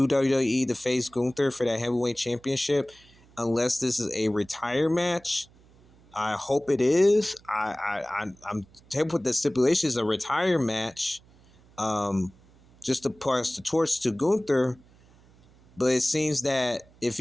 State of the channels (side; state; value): right; noise; hum, 28 dB below the sound